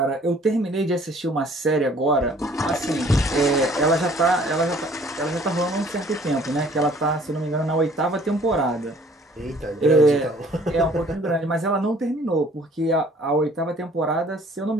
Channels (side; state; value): both; normal; correlation 0.56